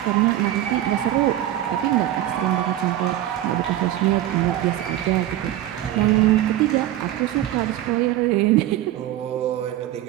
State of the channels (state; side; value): quieter; left; 13.3 dB